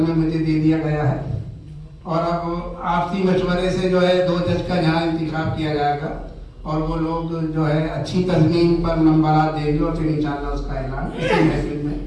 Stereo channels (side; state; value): both; identical; correlation 1.00